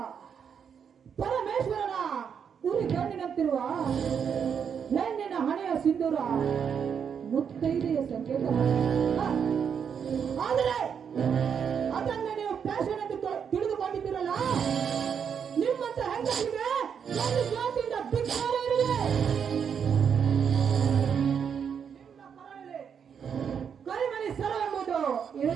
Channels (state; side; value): quieter; left; 7.3 dB